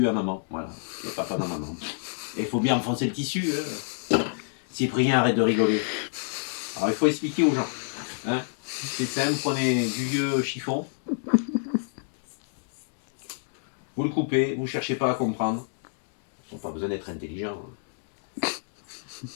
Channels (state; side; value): silent; right; digital silence